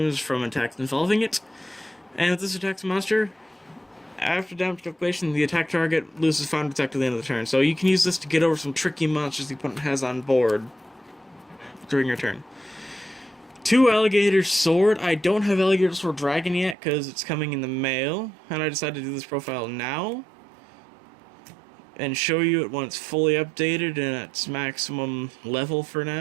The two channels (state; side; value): drops out; left; at 16.8 s